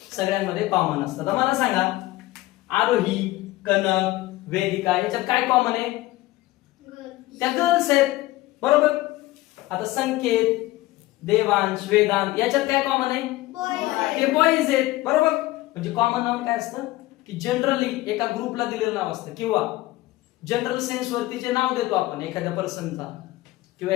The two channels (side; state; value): right; quieter; 18.0 dB